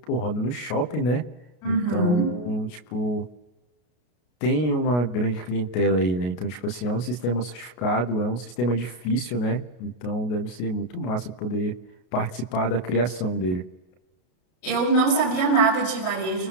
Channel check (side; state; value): right; late; 33 ms